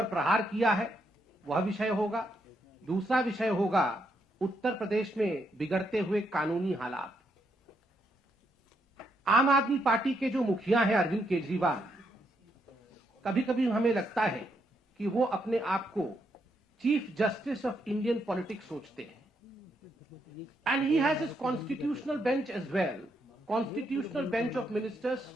प्रहार किया है वह विषय होगा। दूसरा विषय होगा उत्तर प्रदेश में बिगड़ते हुए कानूनी हालात। आम आदमी पार्टी के जो मुखिया हैं अरविंद केजरीवाल, कभी कभी हमें लगता है कि वो अपने आप को chief justice of Indian politics सोचते हैं। And he has his constitutional bench as well, constitutional bench of ministers,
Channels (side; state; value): both; normal; correlation 0.78